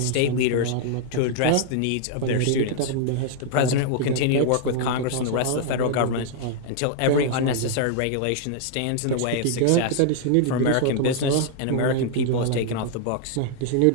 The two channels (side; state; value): both; different; correlation 0.00